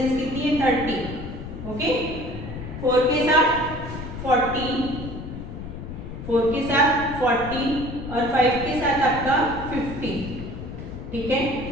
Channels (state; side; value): noise; left; rumble, 9 dB below the sound